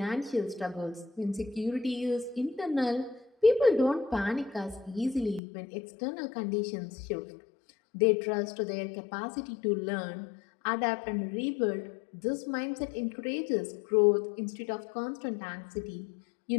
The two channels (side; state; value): right; drops out; at 5.4 s